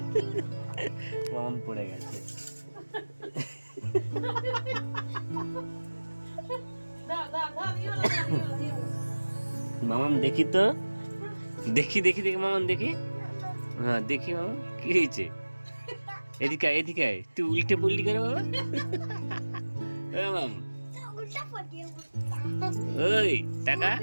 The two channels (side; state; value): both; inverted; correlation -1.00